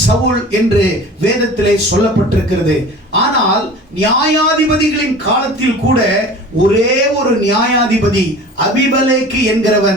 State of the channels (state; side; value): normal; both; correlation 0.40